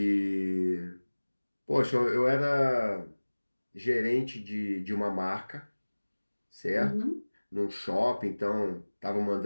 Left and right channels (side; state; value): both; inverted; correlation -1.00